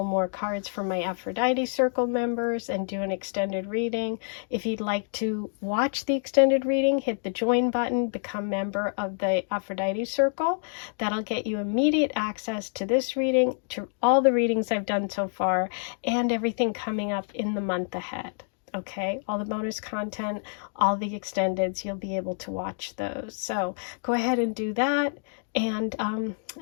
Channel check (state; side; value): silent; right; 60 dB below the other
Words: more cards from my Aphrodite Circle members and do an extended reading. If you'd like to watch the extended reading, hit the join button, become member of the Aphrodite Circle. That'll get you immediate access to this reading, to all the readings I've done so far, and everything coming up in the month ahead. Okay, all the bonus content, all the extendeds, you'll be able to watch those. So go ahead and do that. And